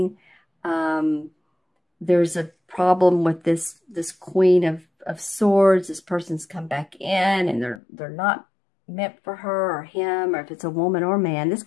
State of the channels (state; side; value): drops out; right; at 7.8 s